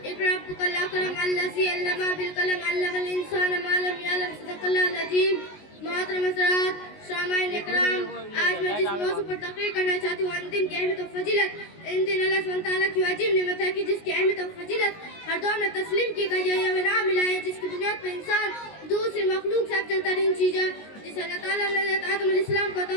اقرأ ربك الأكرم الذي علم بالقلم علم الإنسان ما لم يعلم صدق الله العظيم. محترم حضرات سامعین اکرام، آج میں جس موضوع پر تقریر کرنا چاہتی ہوں ان دن کی اہمیت و فضیلت، ان دن اللہ سبحانہ تعالیٰ کی عجیب نعمت ہے کہ جس کی اہمیت و فضیلت ہر دور میں تسلیم کی گئی ہے. یہ نام ملا ہے جس کی بنیاد پر انسان دوسری مخلوق سے افضل ترین چیز ہے، جسے اللہ تعالیٰ نے حضرت آدم علیہ السلام کو عطا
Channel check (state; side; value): late; right; 19 ms